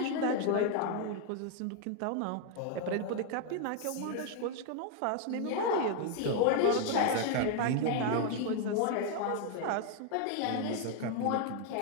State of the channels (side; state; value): both; different; correlation 0.00